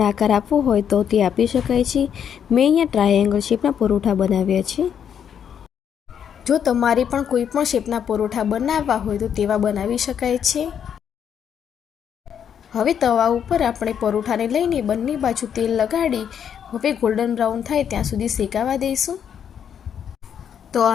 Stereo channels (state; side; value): quieter; right; 8.4 dB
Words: આકાર આપવો હોય તો તે આપી શકાય છે। મેં અહીંયા ટ્રાયેંગલ શેપના પરોઠા બનાવ્યા છે। જો તમારે પણ કોઈ પણ શેપના પરોઠા બનાવવા હોય તો તેવા બનાવી શકાય છે। હવે તવા ઉપર આપણે પરોઠાને લઈને બંને બાજુ તેલ લગાડી હવે ગોલ્ડન બ્રાઉન થાય ત્યાં સુધી શેકાવા દઈશું। તો